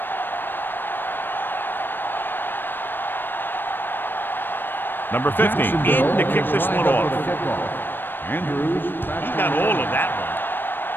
Number 50 in to kick this one off. Andrews. He got all of that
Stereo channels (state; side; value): late; right; 0.095 ms